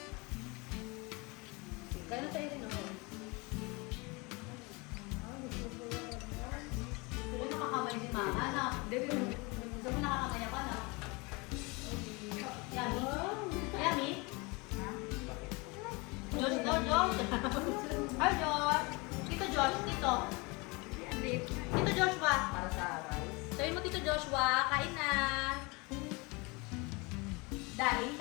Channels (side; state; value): right; quieter; 27.1 dB